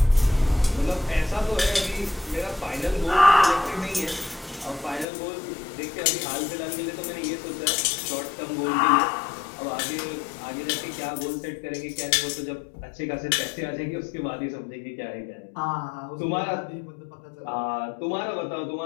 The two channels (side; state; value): right; drops out; at 5.1 s